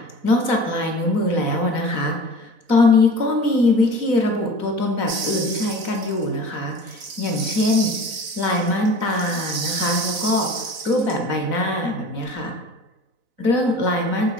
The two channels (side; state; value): left; late; 4.0 ms